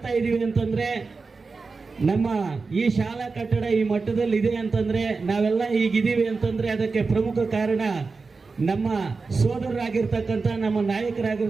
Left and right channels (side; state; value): left; quieter; 4.3 dB